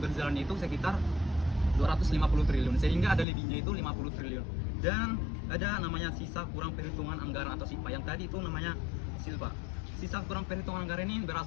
berjalan itu sekitar 250 triliun, sehingga ada lebihnya itu 50 triliun. Dan ada namanya sisa kurang perhitungan anggaran atau SIPA, yang tadi itu namanya SILPA. Sisa kurang perhitungan anggaran ini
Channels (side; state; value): right; drops out; at 3.2 s